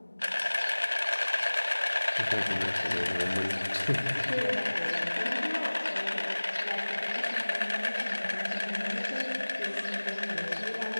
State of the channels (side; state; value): both; inverted; correlation -1.00